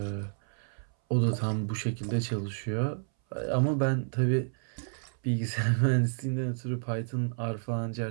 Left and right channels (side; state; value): left; silent; 58 dB below the other